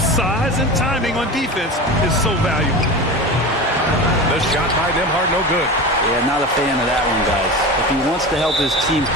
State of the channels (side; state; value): both; normal; correlation 0.28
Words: and timing on defense is so valuable. The shot by Nembhard, no good. Yeah, not a fan of that one, guys. If he wants to help his team